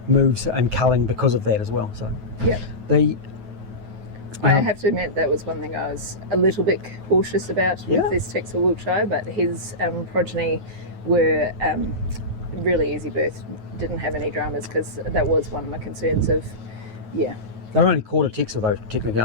moves and culling because of that as well. So Yep. I have to admit that was one thing I was a little bit cautious about with this Texel Wiltshire, but his progeny were really easy birth, didn't have any dramas, because that was one of my concerns of, they're only quarter Texel though, technically,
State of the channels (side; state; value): left; late; 9.3 ms